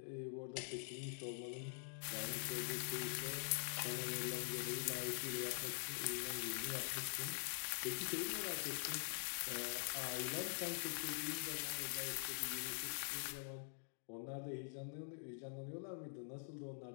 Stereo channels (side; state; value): right; silent; digital silence